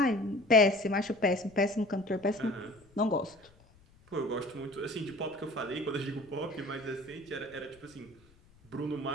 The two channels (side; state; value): left; noise; rumble, 28 dB below the sound